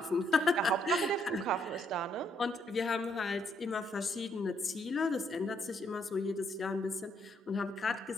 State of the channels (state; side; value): normal; both; correlation 0.72